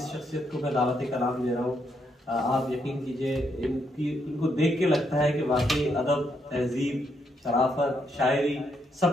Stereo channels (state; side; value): normal; both; correlation 0.77